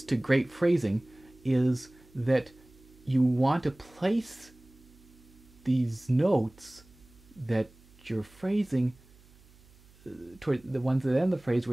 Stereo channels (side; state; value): right; noise; hum, 26 dB below the sound